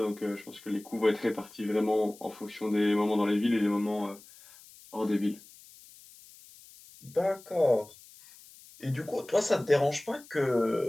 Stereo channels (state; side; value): noise; left; hiss, 22 dB below the sound